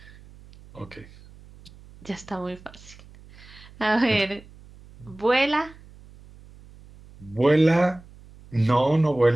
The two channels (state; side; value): noise; right; hum, 22 dB below the sound